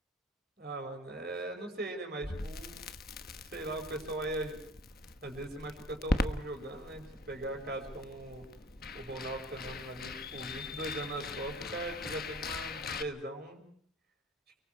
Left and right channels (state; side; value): normal; both; correlation 0.49